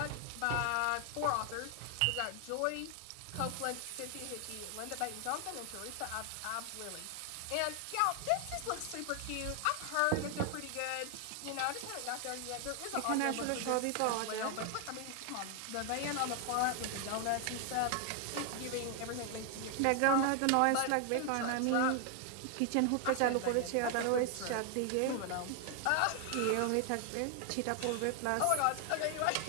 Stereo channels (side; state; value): both; different; correlation 0.00